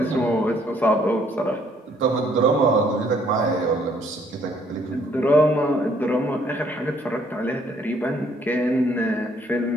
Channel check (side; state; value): both; normal; correlation 0.65